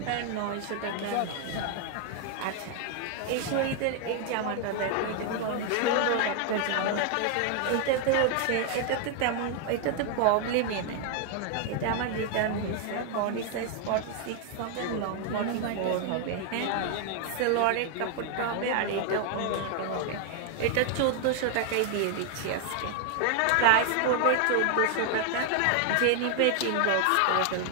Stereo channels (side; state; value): both; different; correlation 0.00